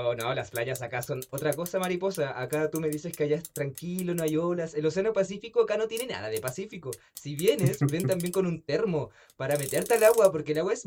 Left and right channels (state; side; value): identical; both; correlation 1.00